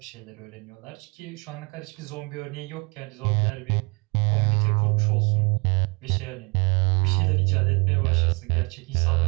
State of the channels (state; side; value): quieter; left; 30.3 dB